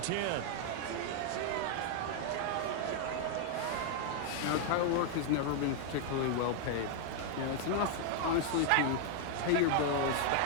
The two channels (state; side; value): different; both; correlation 0.00